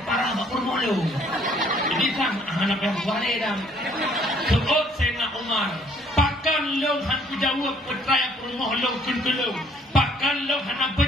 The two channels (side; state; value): both; normal; correlation 0.61